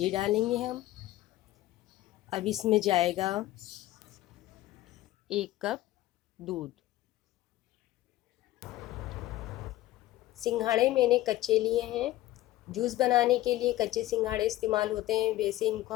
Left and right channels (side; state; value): right; quieter; 15.9 dB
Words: डालेंगे हम। अब इसमें जाएगा 1 कप दूध। सिंघाड़े मैंने कच्चे लिए हैं। जूस बनाने के लिए कच्चे सिंघाड़े इस्तेमाल होते हैं। वैसे इनको